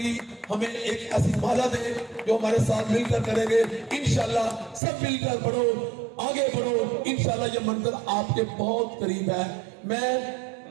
ہمیں ایک ایسی مالا دے جو ہمارے ساتھ مل کر کریں گے، انشاءاللہ سب مل کر بڑھو، آگے بڑھو، انشاءاللہ یہ منزل آپ کے بہت قریب ہے، میں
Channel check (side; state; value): left; drops out; at 4.8 s